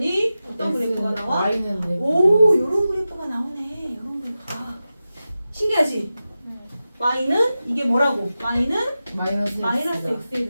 어떤 그래프가 나와? Y는 네. 요런 그래프가 나오네. 요런 그래프가. 신기하지? y는 이게 뭐라고? y는 마이너스 x의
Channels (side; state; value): both; inverted; correlation -0.94